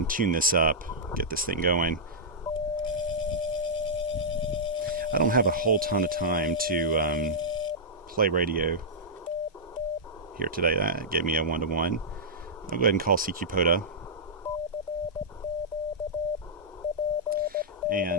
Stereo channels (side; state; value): both; normal; correlation -0.11